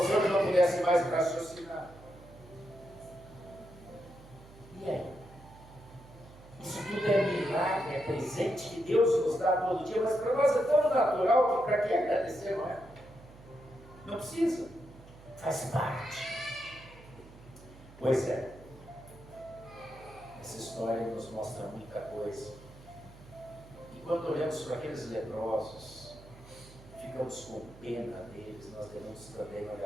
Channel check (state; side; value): noise; right; hum, 20 dB below the sound